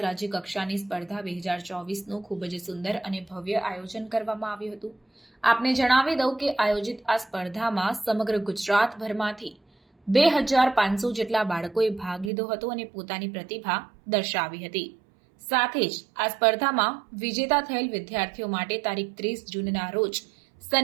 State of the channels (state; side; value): drops out; left; at 12.3 s